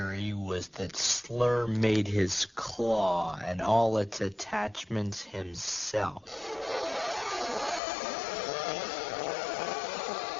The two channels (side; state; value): right; drops out; at 7.8 s